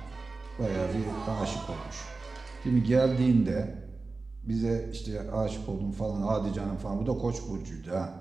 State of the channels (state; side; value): quieter; left; 3.7 dB